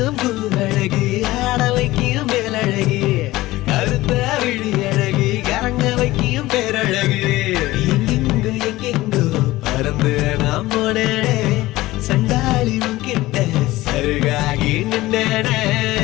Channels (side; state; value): right; quieter; 17.9 dB